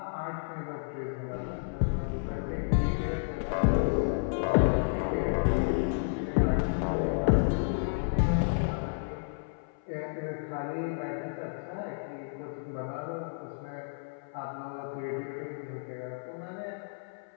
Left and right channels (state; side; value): silent; right; 57 dB below the other